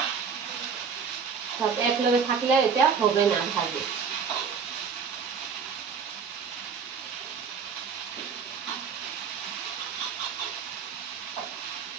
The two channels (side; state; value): left; quieter; 6.1 dB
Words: সব একলগে থাকলে এটা হবে না ভাজি।